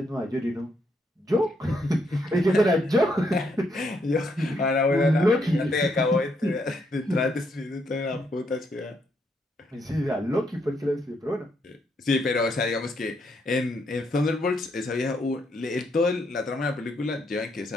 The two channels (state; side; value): normal; both; correlation 0.76